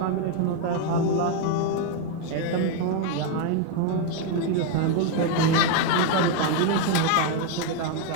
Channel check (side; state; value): both; different; correlation 0.01